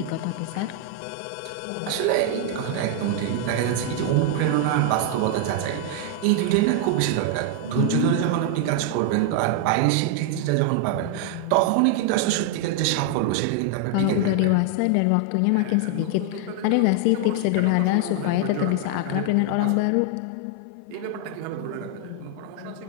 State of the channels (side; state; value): both; different; correlation 0.00